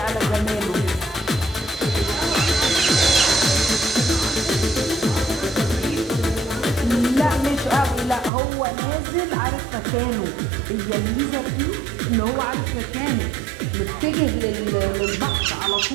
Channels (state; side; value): drops out; left; at 8.3 s